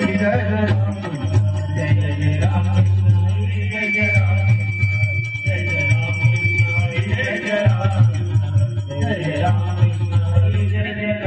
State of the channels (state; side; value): identical; both; correlation 1.00